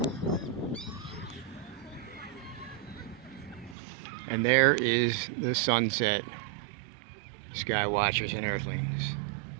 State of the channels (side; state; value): left; drops out; at 3.8 s